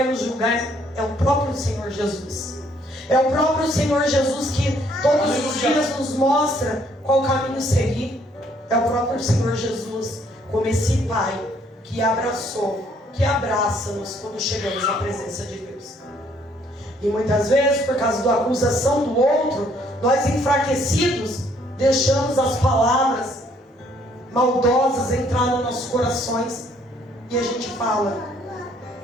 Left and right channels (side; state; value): both; normal; correlation 0.65